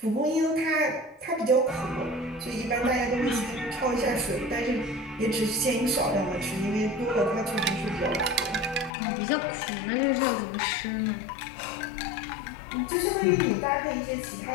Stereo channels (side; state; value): right; drops out; at 8.9 s